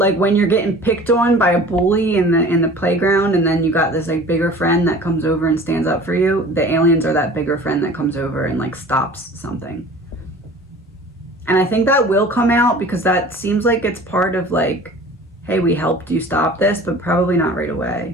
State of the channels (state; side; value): normal; both; correlation 0.44